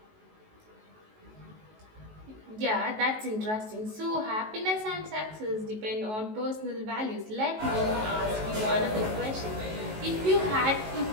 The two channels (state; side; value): late; left; 19 ms